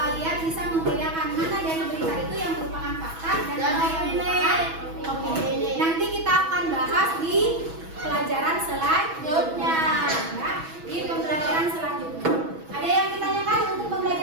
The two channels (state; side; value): late; left; 6.2 ms